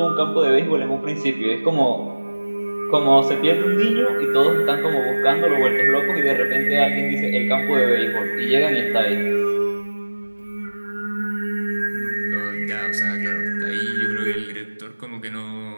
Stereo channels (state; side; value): inverted; both; correlation -1.00